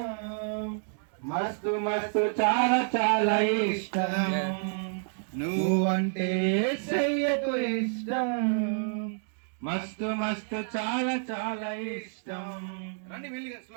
మస్తు మస్తు చాలా చాలా ఇష్టం నువ్వంటే యేసయ్యకు ఇష్టం మస్తు మస్తు చాలా చాలా ఇష్టం రండి వెళ్ళిగా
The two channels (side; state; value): left; silent; digital silence